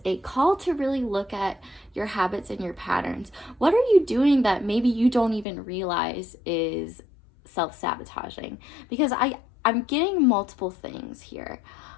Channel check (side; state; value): right; drops out; at 5.5 s